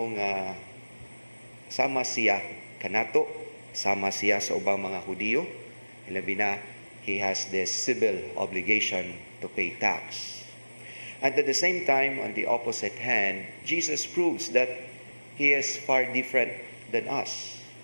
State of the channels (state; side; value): inverted; both; correlation -1.00